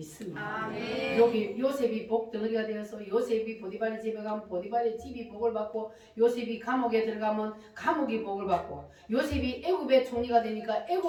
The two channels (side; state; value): both; identical; correlation 1.00